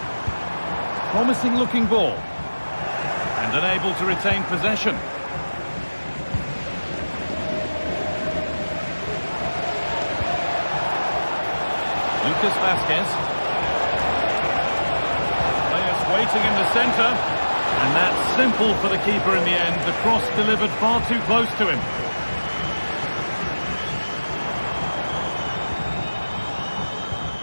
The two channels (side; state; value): both; inverted; correlation -1.00